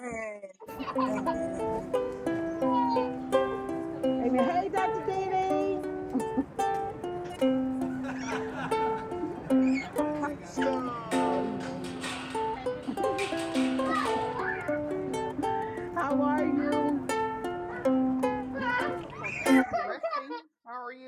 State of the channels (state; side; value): identical; both; correlation 1.00